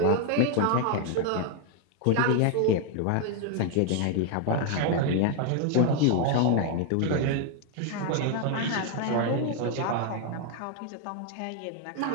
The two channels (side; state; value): both; different; correlation 0.00